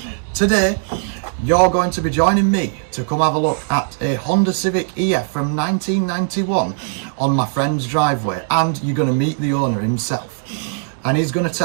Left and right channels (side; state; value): left; silent; digital silence